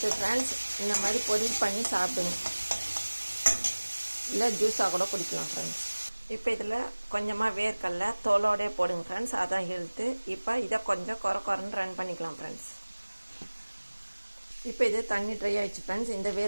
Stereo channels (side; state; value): both; inverted; correlation -1.00